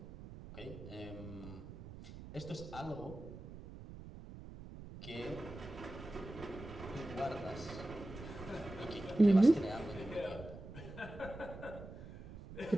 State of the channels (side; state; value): right; noise; rumble, 13 dB below the sound